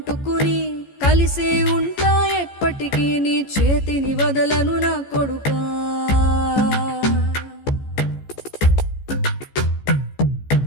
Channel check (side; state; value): right; late; 14 ms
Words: కలిసే ఉంటా ఎప్పటికీ నీ చేతిని వదలను నా కొడుకా.